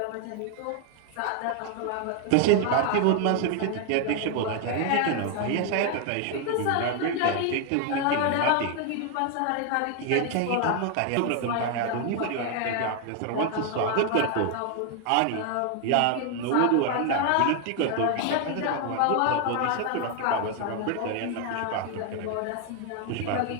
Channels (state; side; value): different; both; correlation 0.00